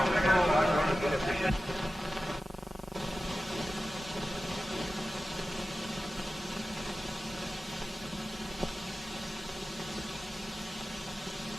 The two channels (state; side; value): normal; both; correlation 0.94